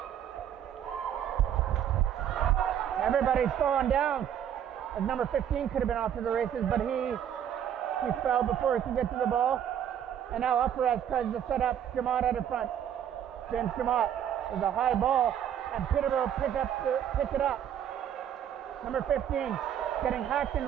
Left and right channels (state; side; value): quieter; left; 9.6 dB